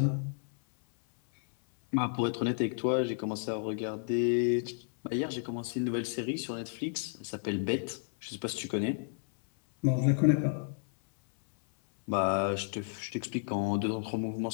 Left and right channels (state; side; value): silent; right; 57 dB below the other